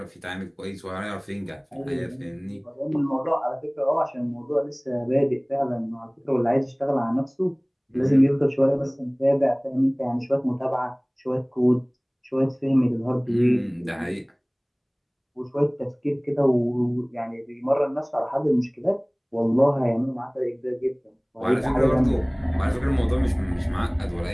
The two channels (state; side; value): identical; both; correlation 1.00